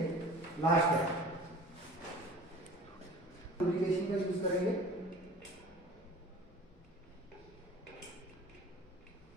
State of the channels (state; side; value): normal; both; correlation 0.43